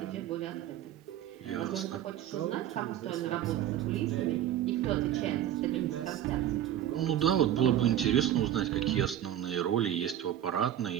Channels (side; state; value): left; quieter; 11.4 dB